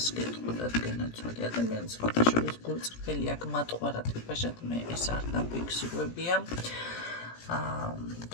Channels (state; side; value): late; right; 17 ms